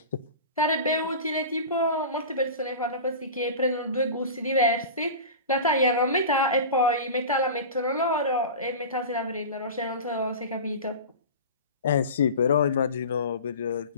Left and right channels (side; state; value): both; inverted; correlation -0.31